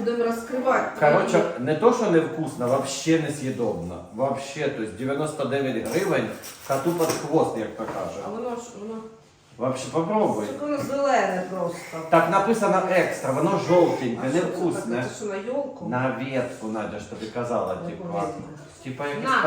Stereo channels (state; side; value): identical; both; correlation 1.00